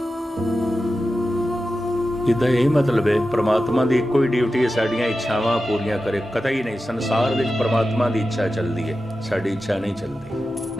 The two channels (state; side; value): normal; both; correlation 0.92